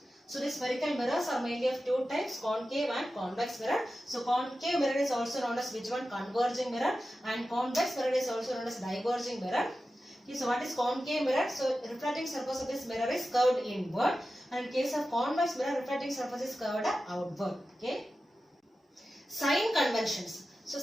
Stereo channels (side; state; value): both; normal; correlation 0.93